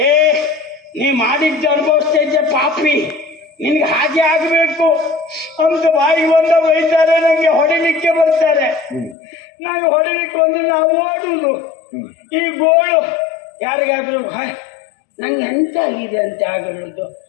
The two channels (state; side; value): drops out; right; at 9.2 s